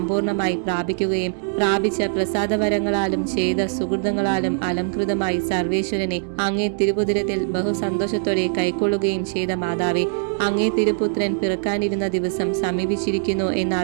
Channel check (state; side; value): silent; left; 64 dB below the other